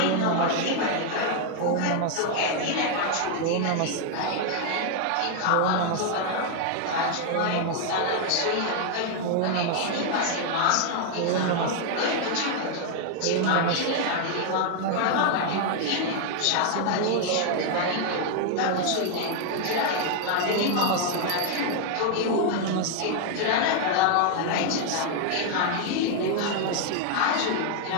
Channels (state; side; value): different; both; correlation 0.00